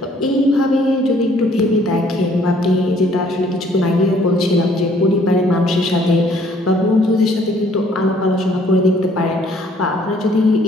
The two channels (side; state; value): both; normal; correlation 0.61